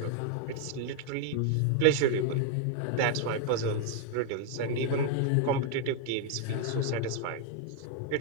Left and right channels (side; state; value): both; different; correlation 0.00